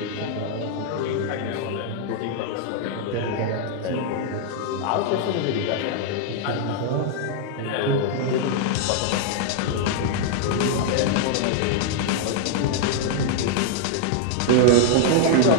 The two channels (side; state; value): both; different; correlation 0.00